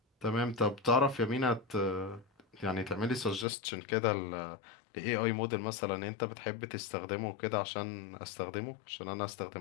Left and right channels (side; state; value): right; drops out; at 3.5 s